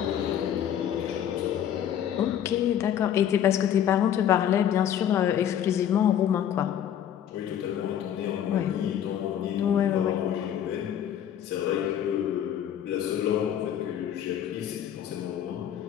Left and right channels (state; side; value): quieter; right; 10.0 dB